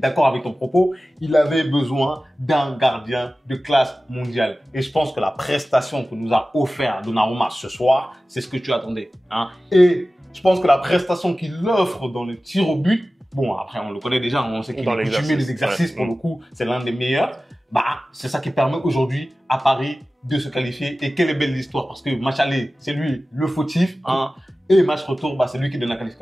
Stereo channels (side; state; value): both; normal; correlation 0.96